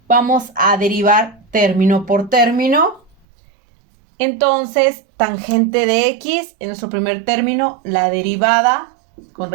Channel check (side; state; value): left; drops out; at 3.2 s